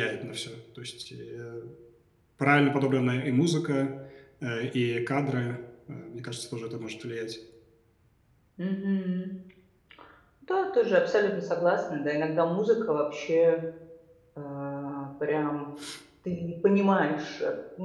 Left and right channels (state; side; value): identical; both; correlation 1.00